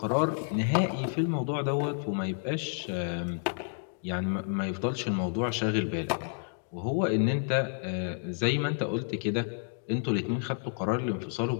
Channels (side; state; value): right; silent; digital silence